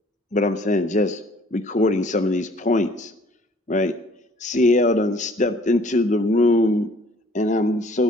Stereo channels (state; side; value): normal; both; correlation 0.56